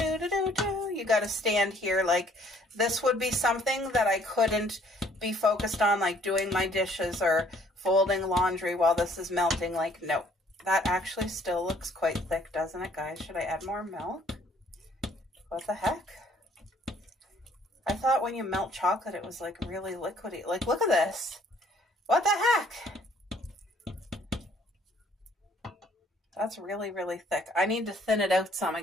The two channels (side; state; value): both; normal; correlation 0.61